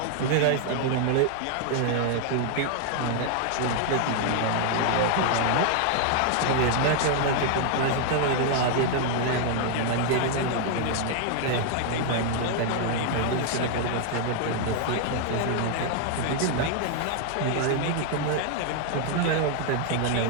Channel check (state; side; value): different; both; correlation 0.00